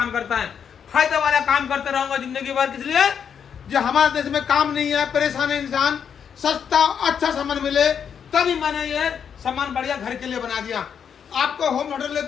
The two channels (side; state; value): right; quieter; 7.6 dB